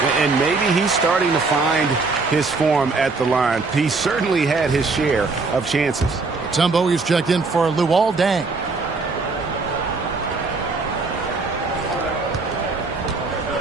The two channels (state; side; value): quieter; left; 4.0 dB